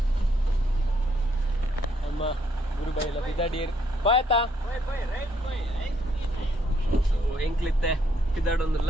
ಅಮ್ಮ ಗುರುಬೈ ಎಲ್ಲ ಪಿದಾಡಿಯರ್ ಬಾಯ್ತಾ ಎಂಕ್ಲಿತ್ತೆ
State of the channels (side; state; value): both; normal; correlation 0.71